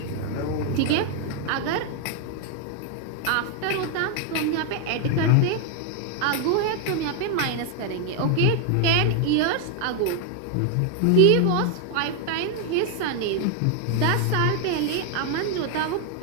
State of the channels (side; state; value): both; different; correlation 0.01